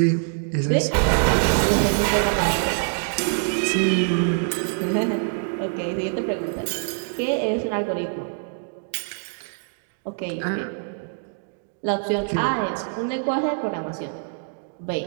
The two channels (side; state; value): left; silent; digital silence